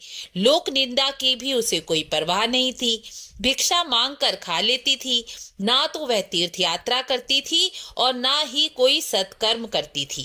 लोक निंदा की भी उसे कोई परवाह नहीं थी। भिक्षा मांग कर खा लेती थी। ना तो वह तीर्थ यात्रा करती थी और ना ही कोई सत्कर्म करती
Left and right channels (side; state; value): both; identical; correlation 1.00